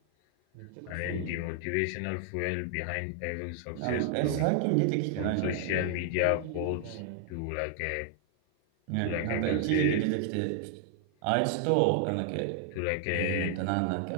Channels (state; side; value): different; both; correlation 0.00